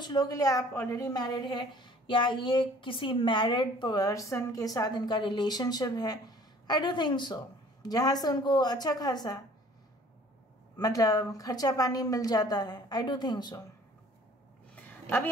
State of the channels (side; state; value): both; normal; correlation 0.53